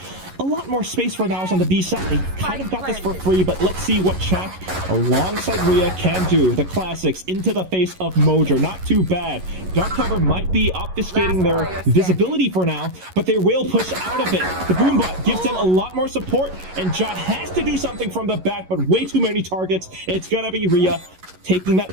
a lot more space for NAOS on the B side. They kind of got this for free, but let's see what Chak alongside Rhea can do. The classics into the face of Mojer. Not too bad. Dark cover might be obfuscating their visibility for now, but they will push out of it. The Boombot gives them a lot more support, and Jot has to do something from the back, but way too many targets. It's gonna be Rhea taking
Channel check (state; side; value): late; left; 11 ms